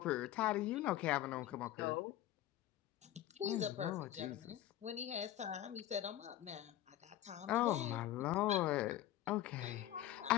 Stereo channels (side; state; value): right; quieter; 13.3 dB